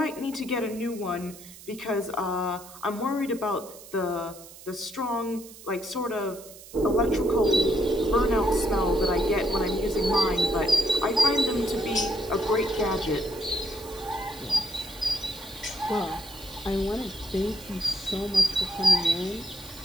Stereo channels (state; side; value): noise; right; hiss, 18 dB below the sound